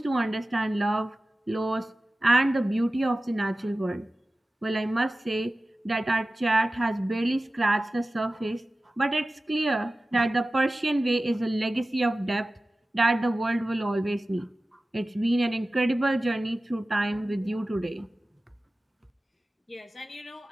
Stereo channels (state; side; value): normal; both; correlation 0.96